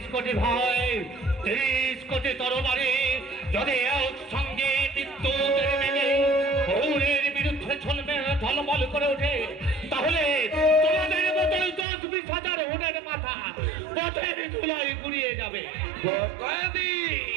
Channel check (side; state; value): left; drops out; at 11.9 s